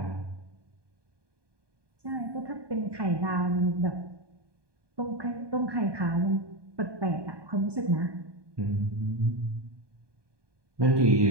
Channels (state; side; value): late; left; 1.2 ms